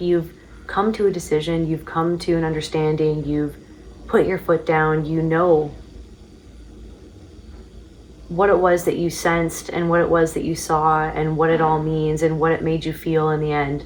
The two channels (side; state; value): both; identical; correlation 1.00